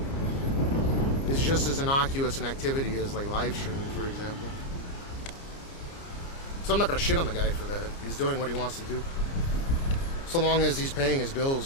just as innocuous an activity as like live streaming, for example. So I'm not gonna shit on the guy for that. He's doing what he wants to do. So long as he's paying his bills,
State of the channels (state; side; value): late; right; 29 ms